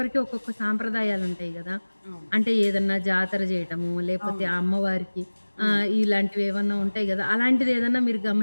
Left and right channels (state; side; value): inverted; both; correlation -1.00